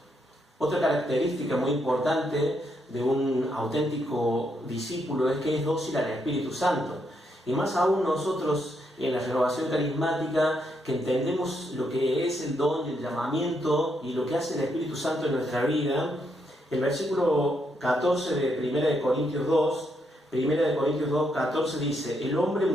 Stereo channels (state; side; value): normal; both; correlation 0.78